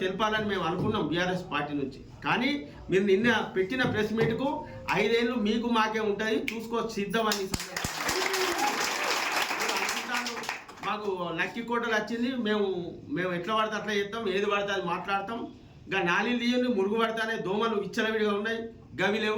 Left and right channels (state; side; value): identical; both; correlation 1.00